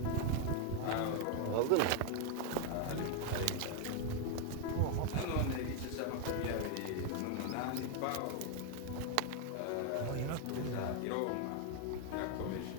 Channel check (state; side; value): different; both; correlation 0.01